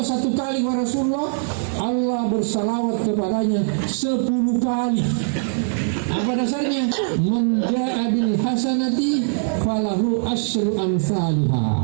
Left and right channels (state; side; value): silent; left; 65 dB below the other